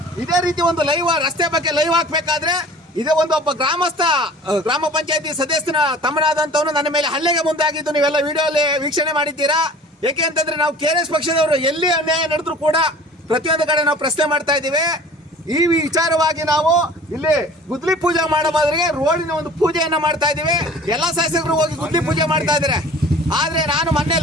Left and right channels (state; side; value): normal; both; correlation 0.45